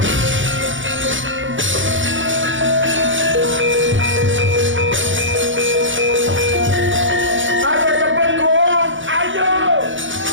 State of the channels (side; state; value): left; late; 0.56 ms